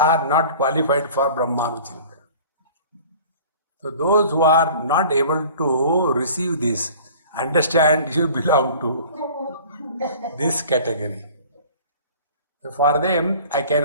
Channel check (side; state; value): both; inverted; correlation -0.45